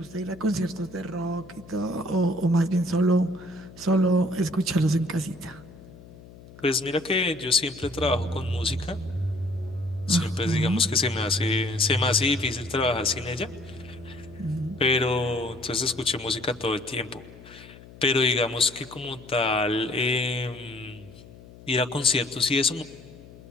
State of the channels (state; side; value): noise; left; hum, 20 dB below the sound